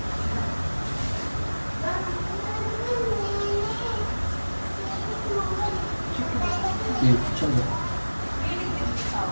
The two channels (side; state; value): both; inverted; correlation -1.00